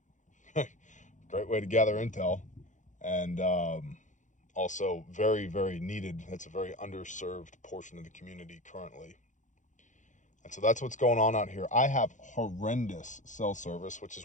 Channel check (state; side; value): late; right; 0.36 ms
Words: Great way to gather intel, and also very, very needed. It's a very underserved portion of the community currently. And so that's what's going on out here. I have horrendous cell service, which